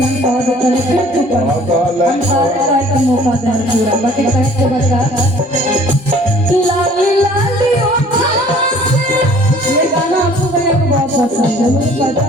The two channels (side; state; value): both; normal; correlation 0.53